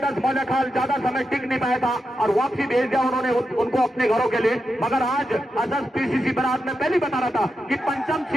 मौलाखाल ज्यादा समय टिक नहीं पाया था और वापसी भेज दिया उन्होंने उनको अपने घरों के लिए। मगर आज अजस पीसीसी बरात में पहले बता रहा था कि पंचम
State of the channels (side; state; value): both; normal; correlation 0.87